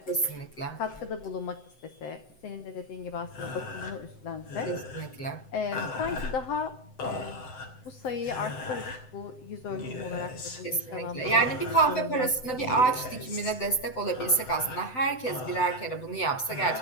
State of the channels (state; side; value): late; right; 7.8 ms